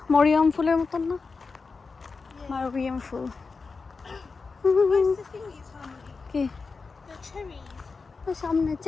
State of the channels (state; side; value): quieter; right; 4.5 dB